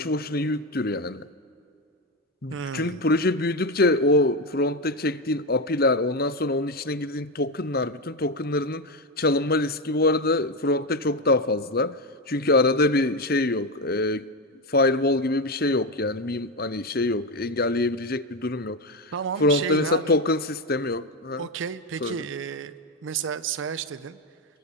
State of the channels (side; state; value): both; normal; correlation 0.12